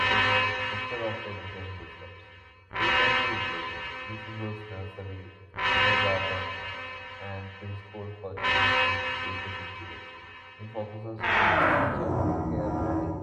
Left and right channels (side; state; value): both; identical; correlation 1.00